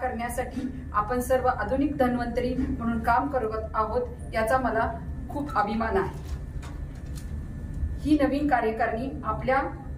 आपण सर्व आधुनिक धन्वंतरी म्हणून काम करत आहोत याचा मला खूप अभिमान आहे. ही नवीन कार्यकारिणी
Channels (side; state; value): both; identical; correlation 1.00